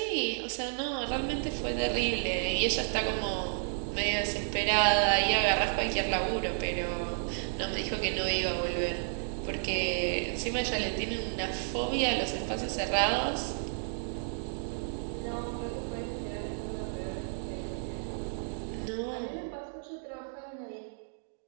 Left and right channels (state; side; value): silent; left; digital silence